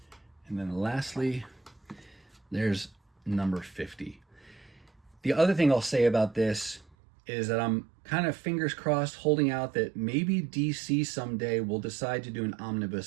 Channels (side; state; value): left; drops out; at 7.0 s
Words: and then lastly, there's number 50. The other thing I'll say about this is that I'm kind of fingers crossed holding out that maybe DC someday will decide to do an